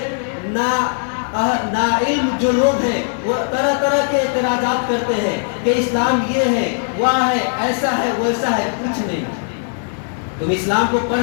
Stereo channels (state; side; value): silent; right; digital silence